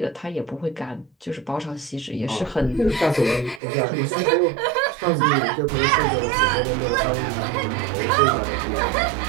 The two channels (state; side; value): drops out; left; at 3.6 s